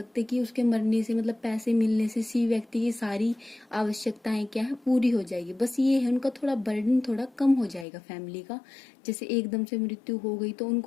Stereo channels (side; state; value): right; drops out; at 7.9 s